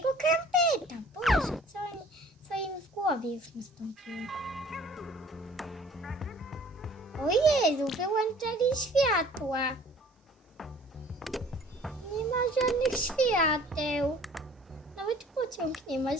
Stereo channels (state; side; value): normal; both; correlation 0.52